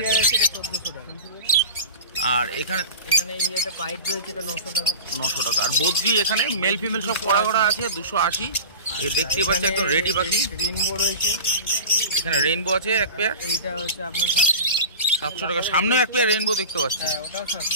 এটা 1400 টাকা। আর এখানে এই একটা পাইপ রয়েছে, এটা 900 টাকা। 900 টাকা। আর বদ্রি এখানে মেল ফিমেল সব করা করা আছে 280। এ দেখতেই পাচ্ছি একদম রেডি পাখি। রেইনবো রয়েছে, এখানে রেইনবো আছে এক পেয়ার, এইটা হচ্ছে আপনার 700 টাকা। 700 টাকা। সামনেও এক পেয়ার রেইনবো দেখতে পাচ্ছি, হ্যাঁ ওটাও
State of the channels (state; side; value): inverted; both; correlation -0.32